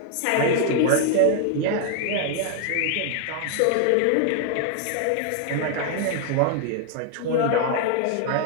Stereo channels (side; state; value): both; different; correlation 0.00